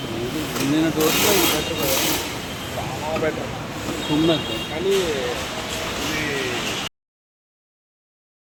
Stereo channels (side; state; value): both; identical; correlation 1.00